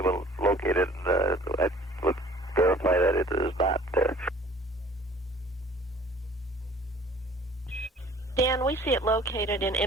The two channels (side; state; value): both; normal; correlation 0.51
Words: to locate it, and I would verify that it is not there. Dan, we see it located in